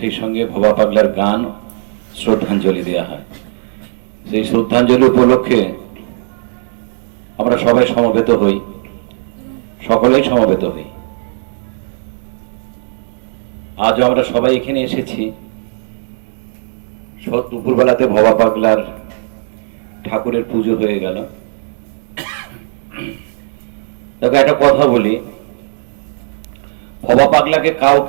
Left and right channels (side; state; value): left; silent; 61 dB below the other